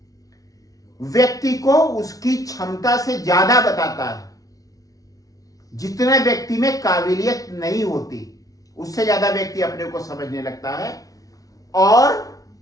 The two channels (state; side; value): late; right; 0.17 ms